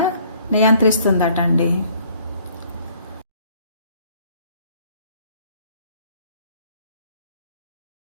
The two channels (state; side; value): inverted; both; correlation -0.60